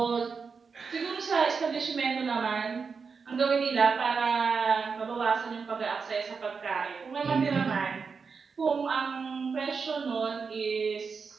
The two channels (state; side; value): quieter; left; 5.3 dB